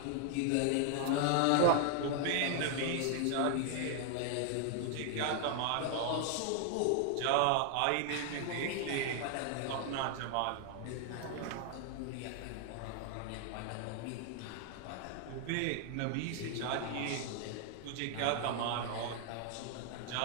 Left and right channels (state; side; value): different; both; correlation 0.00